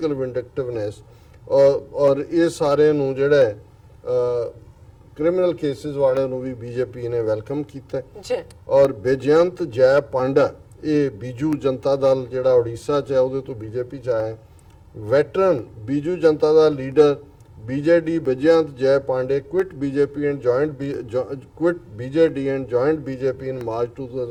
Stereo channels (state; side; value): identical; both; correlation 1.00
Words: vindictiveness. और ये सारे नूं जेड़ा criminal cases वाले नूं भी BJP ने welcome कीता है। और बेजयंत जय पांडा ਇਹ ਬੀਜੂ ਜਨਤਾ ਦਲ ਜਿਹੜਾ ਉੜੀਸਾ 'ਚ ਹੈ ਉਹਦੇ ਤੋਂ BJP 'ਚ ਆਇਆ। ਵੈਟਰਨ ਬੀਜੂ ਜਨਤਾ ਦਾ ਲੀਡਰ BJD ਬੇਜਯੰਤ ਜੈ Pandey quit BJD and joined BJP in March